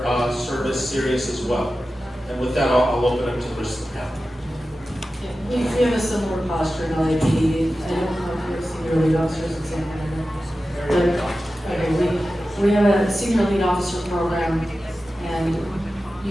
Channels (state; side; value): normal; both; correlation 0.94